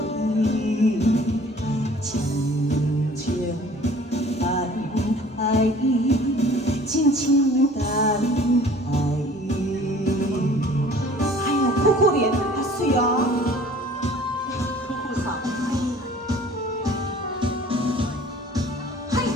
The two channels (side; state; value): both; normal; correlation 0.50